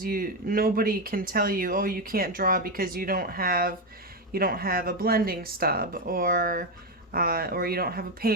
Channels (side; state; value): both; normal; correlation 0.09